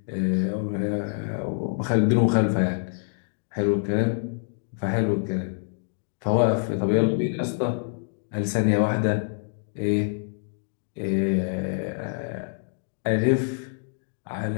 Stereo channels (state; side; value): silent; right; digital silence